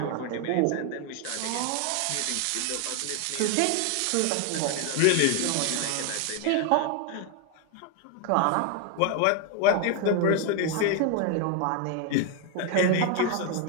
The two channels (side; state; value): both; different; correlation 0.01